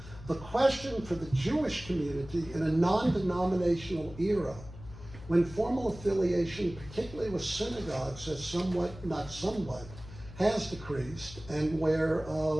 The question for the Jewish community in a non-denominational era, when formal affiliation, particularly with synagogues, has decreased, and where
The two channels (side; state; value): left; noise; hum, 15 dB below the sound